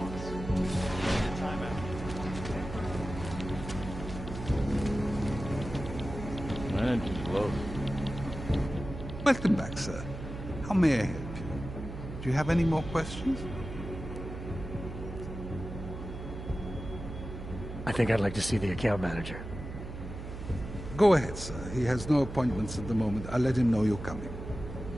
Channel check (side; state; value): right; noise; hum, 9 dB below the sound